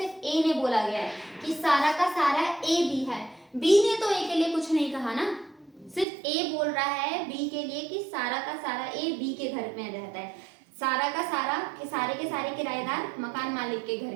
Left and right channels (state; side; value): drops out; left; at 6.1 s